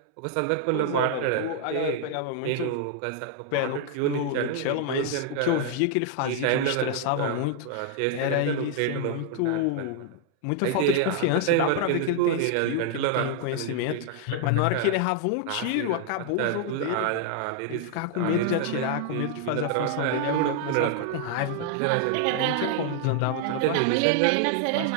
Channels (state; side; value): different; both; correlation 0.00